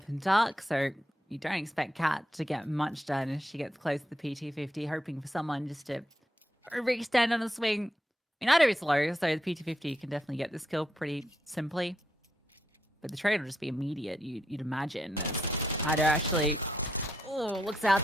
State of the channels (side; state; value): both; normal; correlation 0.80